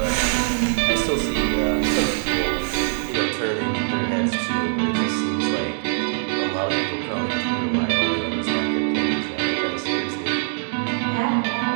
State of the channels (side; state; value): left; silent; digital silence